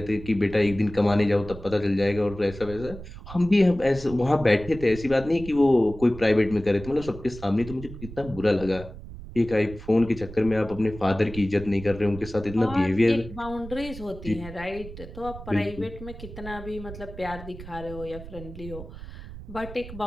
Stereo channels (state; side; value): noise; right; rumble, 13 dB below the sound